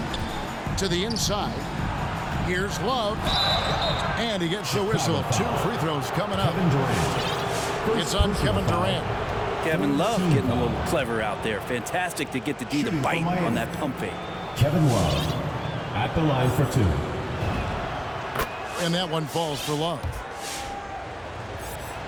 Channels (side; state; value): both; identical; correlation 1.00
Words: To the inside. Here's Love. And he gets the whistle. 2 free throws coming up. It's on Kevin Durant. Kevin Love getting a little clever out there. Fantastic to get the D to bite on that pump fake. Kevin Love at the line for 2. And that one falls for Love.